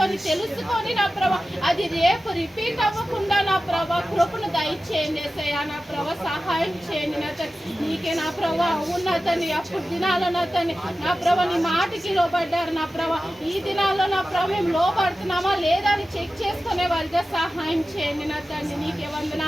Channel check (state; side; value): normal; both; correlation 0.94